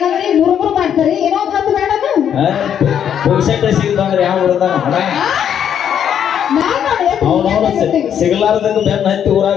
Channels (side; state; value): right; quieter; 9.0 dB